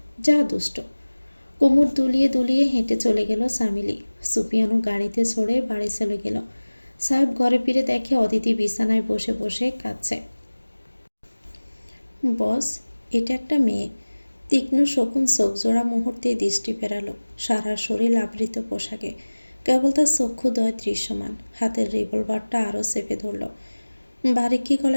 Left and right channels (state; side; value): inverted; both; correlation -1.00